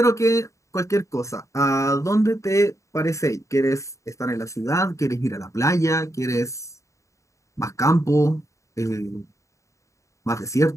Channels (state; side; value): late; right; 0.15 ms